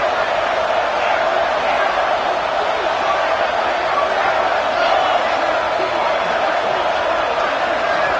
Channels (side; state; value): both; identical; correlation 1.00